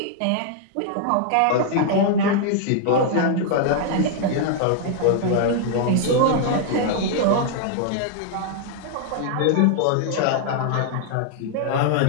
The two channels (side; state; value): both; different; correlation 0.00